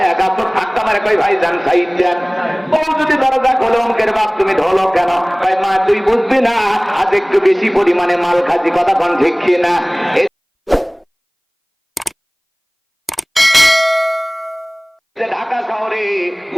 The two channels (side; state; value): both; identical; correlation 1.00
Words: গাছ ঠাক্কা মারে, কই ভাই যান সাইড যান। বউ যদি দরজা খোলে, অঙ্কের বাপ তুমি ঢোলো কেন? ভাই মা তুই বুঝবি না, আজ একটু বেশি পরিমাণে মাল খাচ্ছি, কথা কোন ঠিক না? ঢাকা শহরে